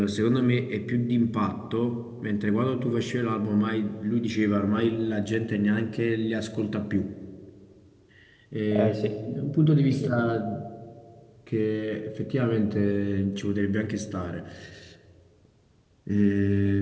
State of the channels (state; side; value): identical; both; correlation 1.00